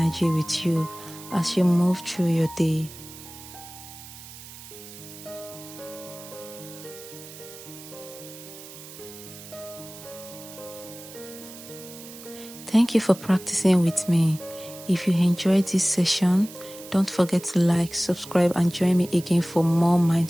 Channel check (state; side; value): noise; right; hiss, 16 dB below the sound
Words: with you as you move through your day. Thank you for practicing with me. If you enjoyed this session, don't forget to like, subscribe, and join me again for more